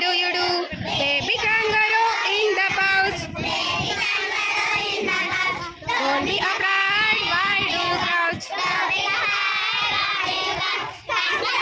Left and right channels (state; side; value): identical; both; correlation 1.00